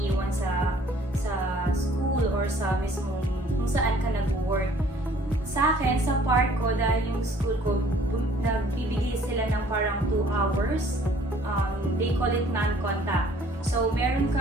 sa school or sa mismong kung saan ka nag-work. Sa akin, sa part ko, dahil yung school ko, nagbibigay sila ng parang 2 hours. They call it non-contact. So, meron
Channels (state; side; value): normal; both; correlation 0.56